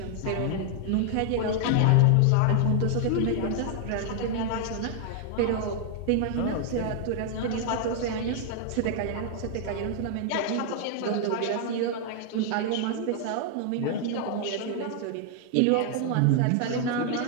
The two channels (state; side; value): different; both; correlation 0.00